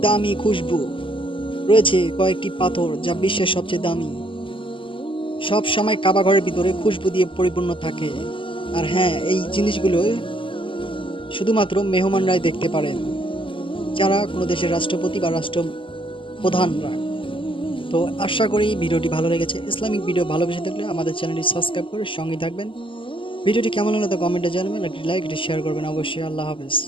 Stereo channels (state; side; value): late; right; 0.25 ms